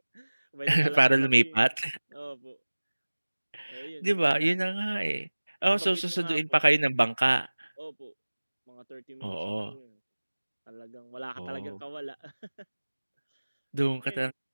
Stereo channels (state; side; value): inverted; both; correlation -1.00